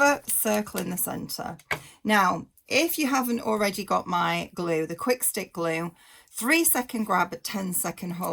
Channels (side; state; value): both; identical; correlation 1.00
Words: circle in the center. Now, if you haven't already got my glue, the quick stick glue, 3-second grab at 10-second